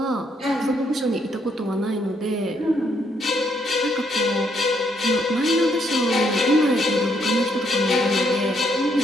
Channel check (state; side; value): normal; both; correlation 0.72